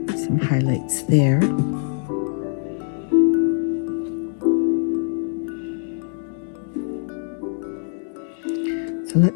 highlights there. So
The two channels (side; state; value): right; silent; 63 dB below the other